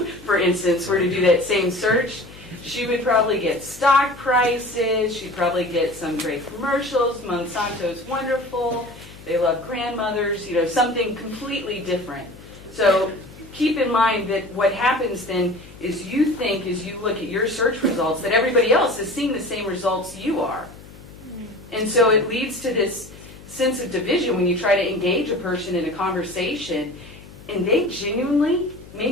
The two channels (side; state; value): left; noise; hum, 19 dB below the sound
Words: instance, were to do that same search, she would probably get stock prices, she'd probably get some great commercials, Monsanto's wonderful, they love grandmothers, something completely different. So keep in mind that what happens then is you think as you look at your search results that everybody else is seeing the same results you are. And so it leads to this sense of division when you try to engage a person in a conversation and they genuinely may